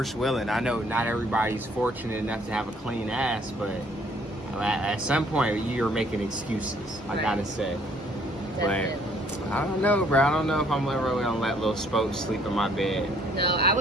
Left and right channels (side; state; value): both; normal; correlation 0.63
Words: willing. I know not everybody's fortunate enough to have a clean ass, but at some point you're making excuses. I gotta say. But I don't know, bro. I don't know if I'm really gonna let little Spoke sleep in my bed. No, I